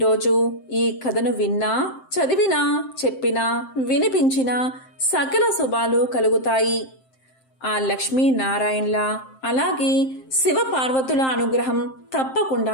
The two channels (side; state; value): right; late; 7.6 ms